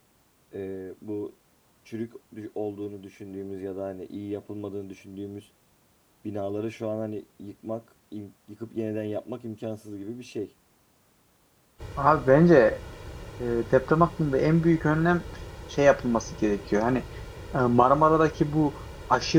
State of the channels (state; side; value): identical; both; correlation 1.00